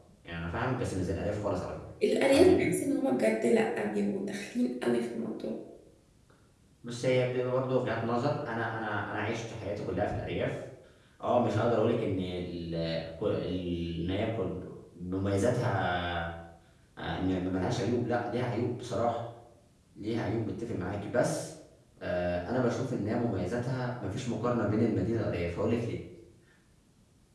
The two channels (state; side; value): identical; both; correlation 1.00